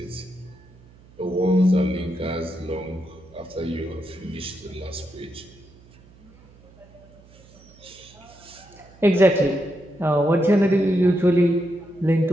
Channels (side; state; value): right; noise; hum, 25 dB below the sound